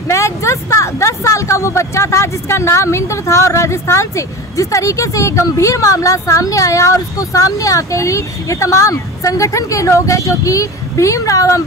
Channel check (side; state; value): both; normal; correlation 0.31